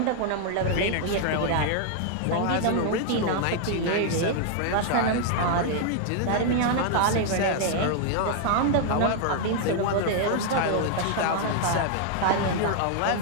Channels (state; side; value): different; both; correlation 0.00